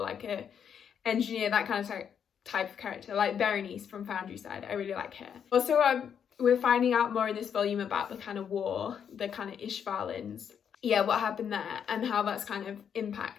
a engineer, that kind of type of character, like Berenice from Foundry Side. I really like her. Also, we're finding out more in this volume about the kind of war, the kind of Ishvalans. Yeah, what happened there and how that's kind of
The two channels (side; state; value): right; quieter; 8.0 dB